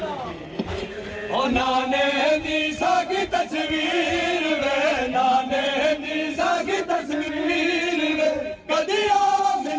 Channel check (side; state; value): both; identical; correlation 1.00